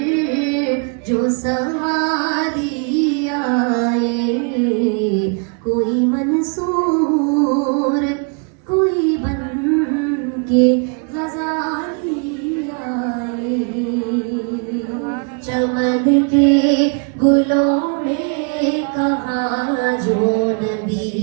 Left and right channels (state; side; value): quieter; left; 38.6 dB